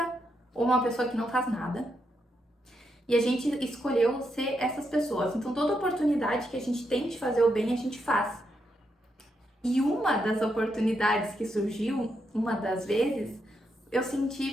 ou uma pessoa que não faz nada. E a gente escolheu ser essas pessoas. Então toda oportunidade que a gente tem de fazer o bem, a gente faz. E uma das oportunidades que surgiu, uma das vezes, eu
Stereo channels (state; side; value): normal; both; correlation 0.81